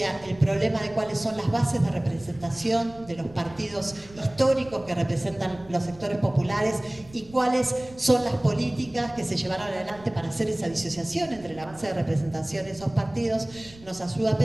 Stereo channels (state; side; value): noise; right; rumble, 22 dB below the sound